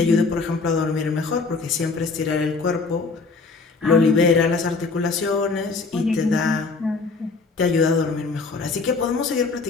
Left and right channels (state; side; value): quieter; right; 4.2 dB